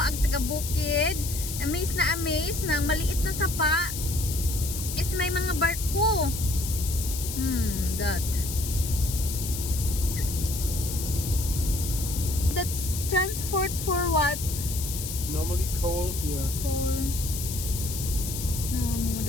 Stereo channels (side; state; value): left; noise; hiss, 6 dB below the sound